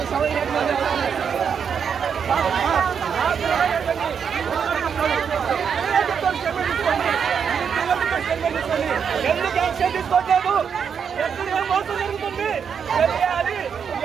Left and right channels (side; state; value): left; quieter; 7.0 dB